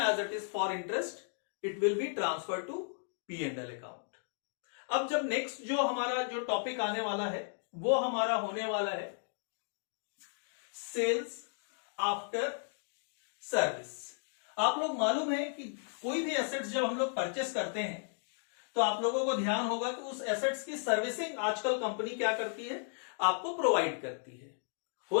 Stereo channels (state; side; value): silent; right; digital silence